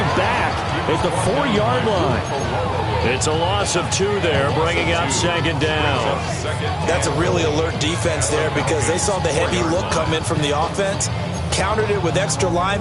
back at the 4-yard line. It's a loss of 2 there, bringing up 2nd down. That's a really alert defense there, because they saw the heavy look come in from the offense, countered it with extra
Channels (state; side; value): identical; both; correlation 1.00